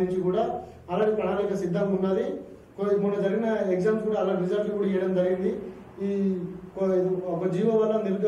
కూడా అలాంటి ప్రణాళిక సిద్ధంగా ఉన్నది. మొన్న జరిగిన ఎగ్జామ్స్ కూడా అలా రిజల్ట్లు కూడా ఇవ్వడం జరిగింది. ఈ ఒక జీవో వల్ల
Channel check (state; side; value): identical; both; correlation 1.00